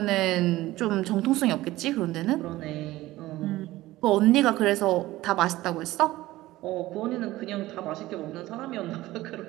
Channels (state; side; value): quieter; left; 17.1 dB